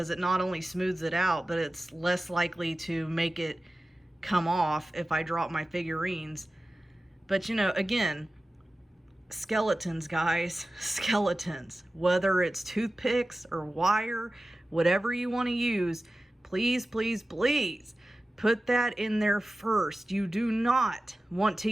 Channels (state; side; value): normal; both; correlation 0.95